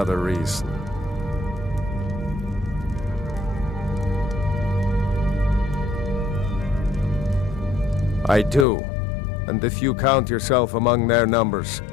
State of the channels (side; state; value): right; drops out; at 8.7 s